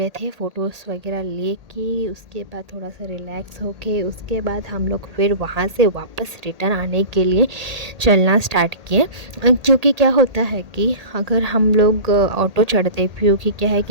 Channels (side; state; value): left; late; 1.8 ms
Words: थे, फ़ोटोज़ वगैरह ले के उसके बाद थोड़ा सा रिलैक्स होके उसके बाद हम लोग फिर वहाँ से वापस रिटर्न आने के लिए चलना स्टार्ट किए। क्योंकि क्या होता है कि अगर हम लोग ऑटो चढ़ते, क्योंकि क्या है